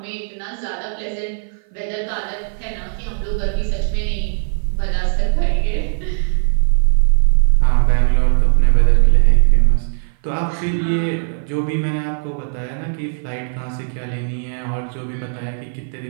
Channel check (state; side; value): silent; left; 55 dB below the other